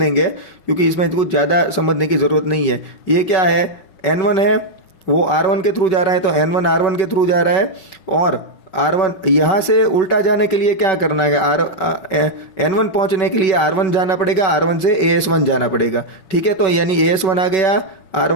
क्योंकि इसमें कुछ ज़्यादा समझने की ज़रूरत नहीं है। ये क्या है, N1 है, वो R1 के थ्रू जा रहा है, तो N1 R1 के थ्रू जा रहा है, और R1 यहाँ से उल्टा जाने के लिए क्या करना है, N1 पहुँचने के लिए R1 जाना पड़ेगा, R1 से AS1 जाना पड़ेगा। ठीक है, तो यानी AS1 आ गया,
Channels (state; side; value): late; right; 5.3 ms